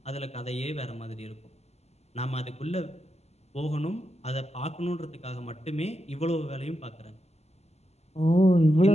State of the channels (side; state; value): right; late; 0.31 ms